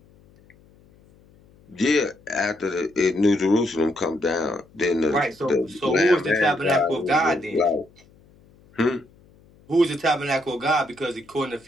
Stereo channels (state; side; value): noise; left; hum, 29 dB below the sound